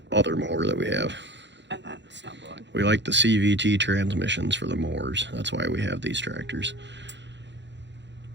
other mower that we have. And then snow blowing. We like the CVT transmissions for the mowers. That's why we have these tractors.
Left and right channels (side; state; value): left; late; 0.52 ms